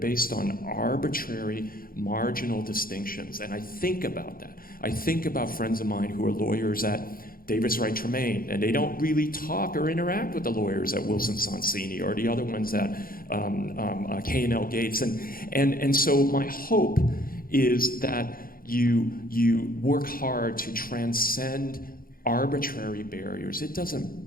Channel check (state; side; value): late; right; 0.42 ms